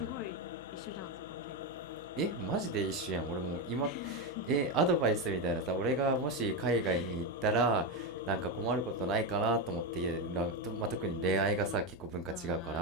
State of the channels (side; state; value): left; noise; hum, 21 dB below the sound